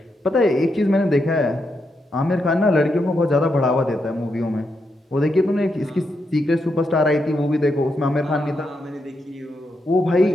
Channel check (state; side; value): normal; both; correlation 0.83